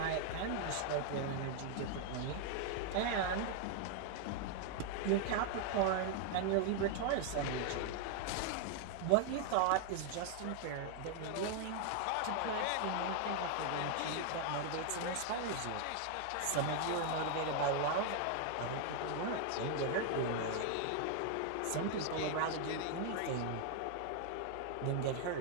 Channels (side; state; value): both; different; correlation 0.00